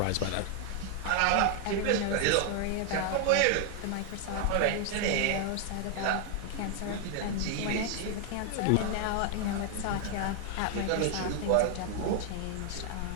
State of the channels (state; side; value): different; both; correlation 0.00